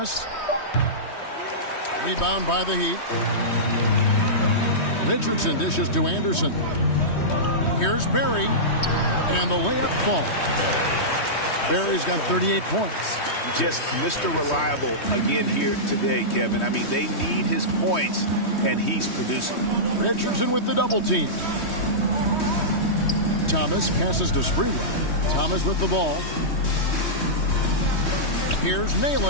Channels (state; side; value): late; right; 3.2 ms